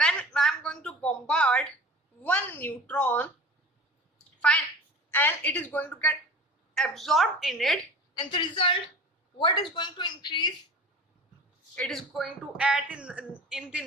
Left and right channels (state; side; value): normal; both; correlation 0.38